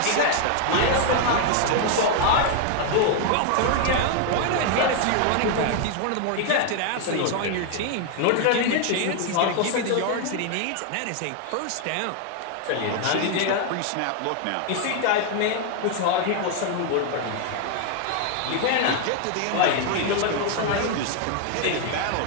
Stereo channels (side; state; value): both; different; correlation 0.00